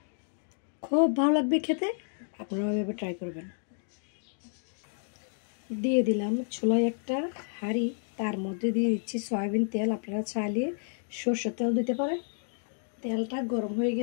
খুব ভালো লাগবে খেতে, আপনারা এভাবে ট্রাই করবেন। দিয়ে দিলাম চুলায় একটা হাঁড়ি, তার মধ্যে দিয়ে দিচ্ছি সয়াবিন তেল। আপনারা চাইলে সরষের তেল দিতে পারেন। তেলটা গরম হয়ে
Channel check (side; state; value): right; silent; digital silence